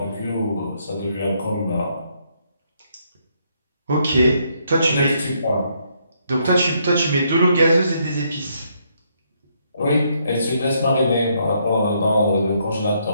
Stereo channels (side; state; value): both; inverted; correlation -0.73